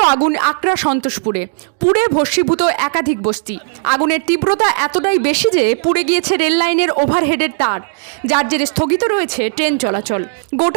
আগুন আকরা সন্তোষপুরে, পুড়ে ভস্মীভূত একাধিক বস্তি। আগুনের তীব্রতা এতটাই বেশি যে পুড়ে গিয়েছে রেল লাইনের ওভারহেডের তার, যার জেরে স্থগিত রয়েছে ট্রেন চলাচল।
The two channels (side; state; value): left; silent; digital silence